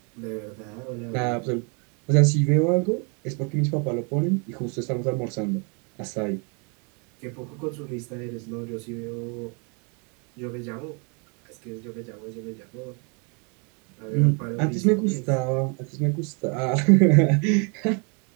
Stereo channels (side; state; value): left; quieter; 35.1 dB